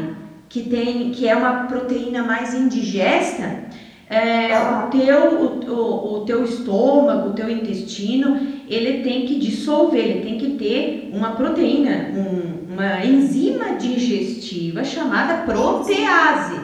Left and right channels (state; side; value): identical; both; correlation 1.00